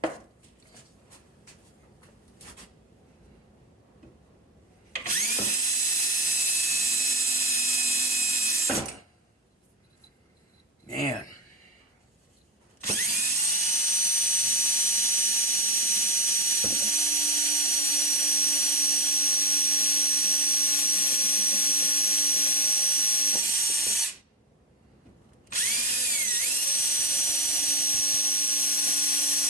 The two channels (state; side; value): normal; both; correlation 0.14